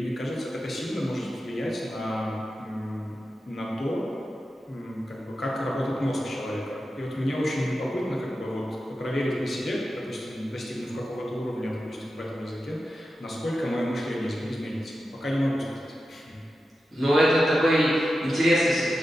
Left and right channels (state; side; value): normal; both; correlation 0.91